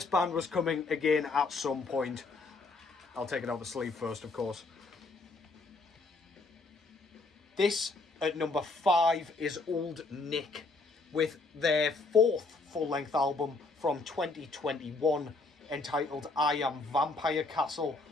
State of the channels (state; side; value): quieter; right; 3.6 dB